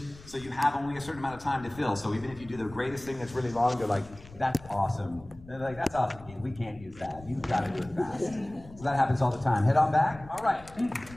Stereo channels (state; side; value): noise; left; rumble, 19 dB below the sound